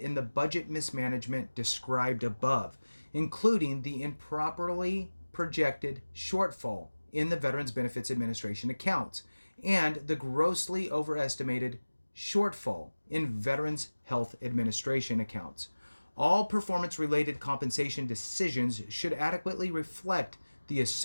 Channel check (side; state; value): both; inverted; correlation -1.00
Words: the budget mismanagement described above, including the improperly projected shortfall in the Veterans Benefits Administration accounts and the grossly overestimated shortfall in Veterans Health Administration accounts. All performance-related compensation decisions should adequately reflect the